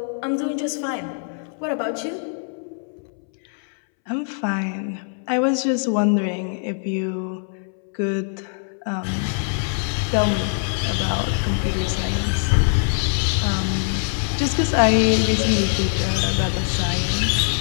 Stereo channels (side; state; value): right; silent; 64 dB below the other